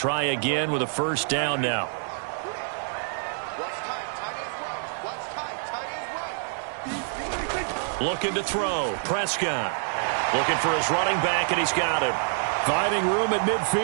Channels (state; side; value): silent; left; digital silence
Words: again with a 1st down now. Looking to throw. Prescott looking for his running back, and he's got him. Finding room at